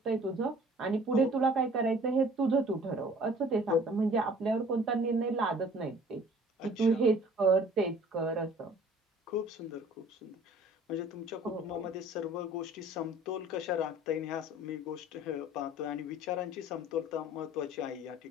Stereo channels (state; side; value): normal; both; correlation 0.51